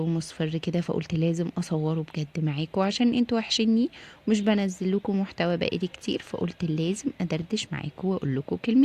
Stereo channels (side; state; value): both; identical; correlation 1.00